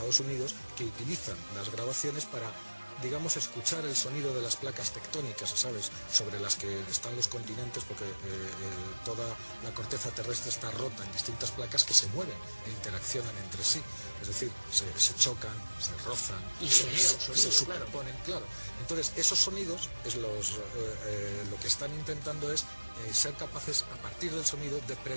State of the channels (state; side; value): inverted; both; correlation -1.00